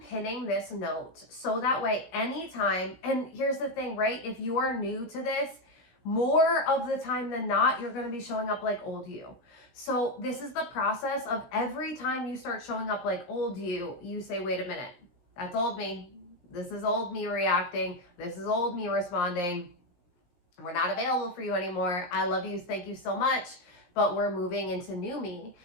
pinning this note so that way anytime, and here's the thing, right? If you are new to this, more of the time than not, you're going to be showing up like old you. So this is the process of every time you start showing up like old you, you say, wait a minute, that's old me. This is old me reacting. This is old me responding. We're not available for you anymore. I love you. Thank you so much. But we're moving into new me,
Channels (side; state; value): right; late; 17 ms